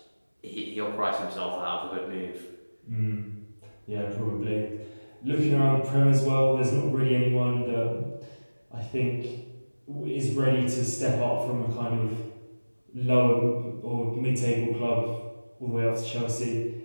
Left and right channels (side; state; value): both; inverted; correlation -1.00